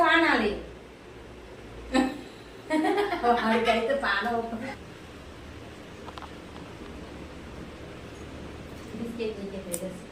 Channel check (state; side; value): identical; both; correlation 1.00